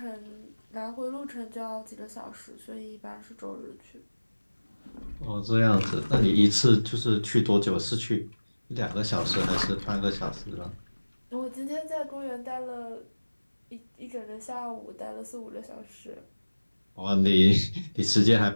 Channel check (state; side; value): inverted; both; correlation -1.00